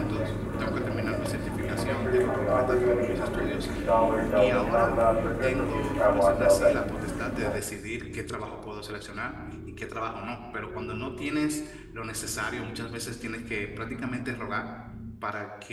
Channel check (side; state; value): both; identical; correlation 1.00